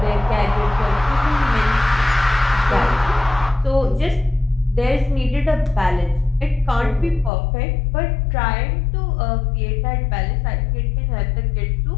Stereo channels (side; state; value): right; drops out; at 7.3 s